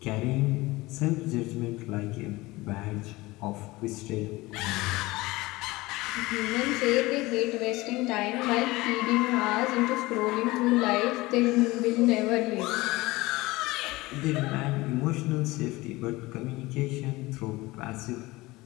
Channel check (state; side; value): quieter; right; 20.6 dB